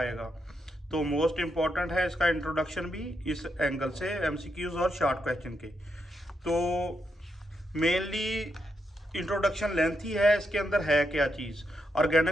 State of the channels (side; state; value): both; normal; correlation 0.82